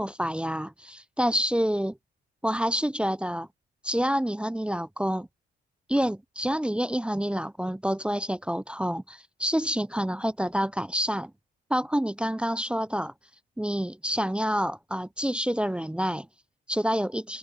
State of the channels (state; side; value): normal; both; correlation 0.87